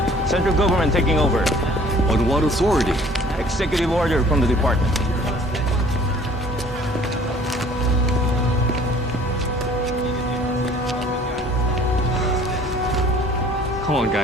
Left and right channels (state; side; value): normal; both; correlation 0.53